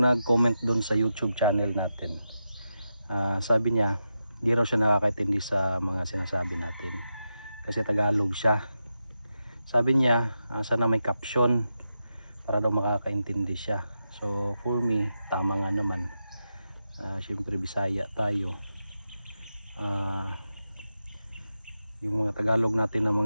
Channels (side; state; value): both; inverted; correlation -0.88